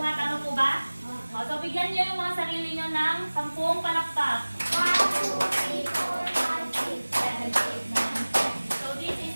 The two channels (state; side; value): inverted; both; correlation -1.00